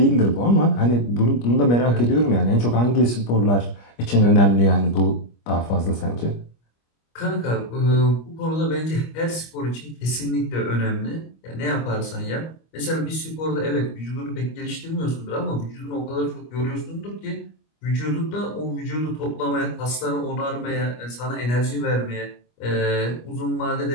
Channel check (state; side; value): late; right; 25 ms